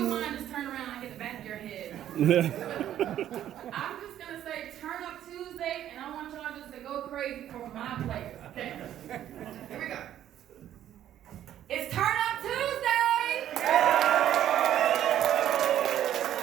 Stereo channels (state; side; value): quieter; left; 11.4 dB